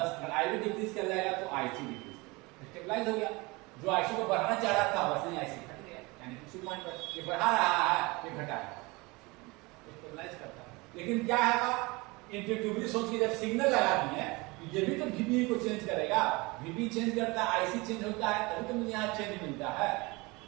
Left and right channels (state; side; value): quieter; left; 24.7 dB